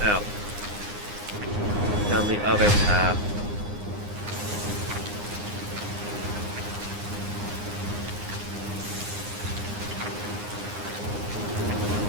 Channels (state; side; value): late; left; 9.7 ms